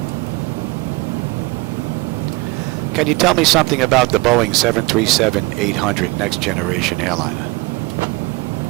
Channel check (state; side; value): quieter; left; 24.0 dB